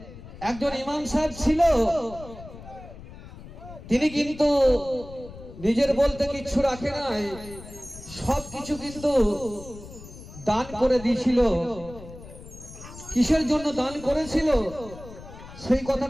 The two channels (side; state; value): left; noise; rumble, 16 dB below the sound